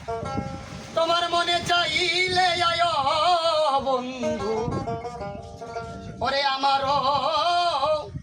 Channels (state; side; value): identical; both; correlation 1.00